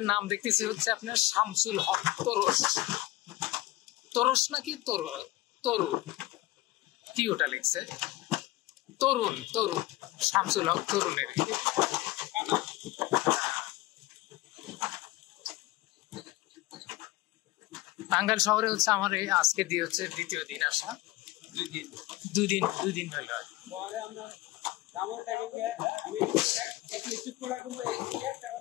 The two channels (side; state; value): right; quieter; 18.5 dB